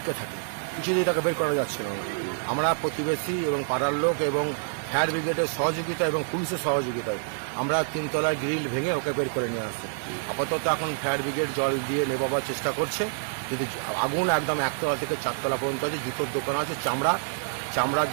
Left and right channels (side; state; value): left; silent; digital silence